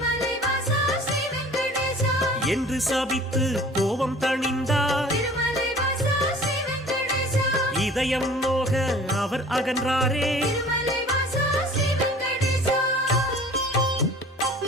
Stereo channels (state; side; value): normal; both; correlation 0.47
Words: வாசா ஸ்ரீ வெங்கடேசா என்று சபித்து கோபம் தணிந்தார். திருமலை வாசா ஸ்ரீ வெங்கடேசா இதயம் நோக அவர் அகன்றாரே. திருமலை வாசா ஸ்ரீ வெங்கடேசா